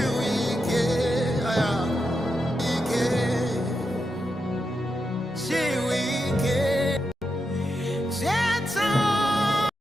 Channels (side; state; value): both; normal; correlation 0.86